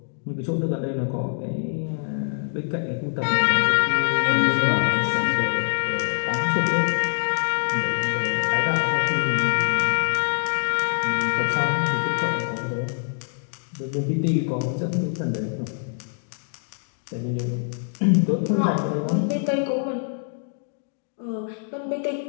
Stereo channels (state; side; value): silent; right; 62 dB below the other